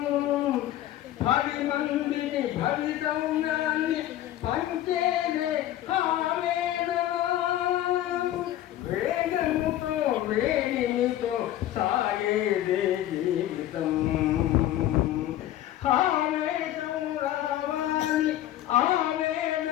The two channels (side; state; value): right; quieter; 13.2 dB